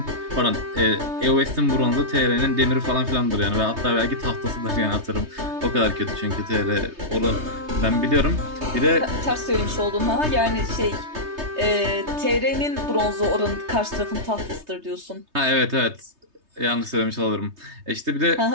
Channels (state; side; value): late; left; 3.2 ms